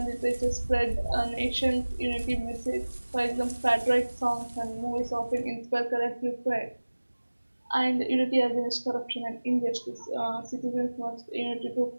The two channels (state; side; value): inverted; both; correlation -1.00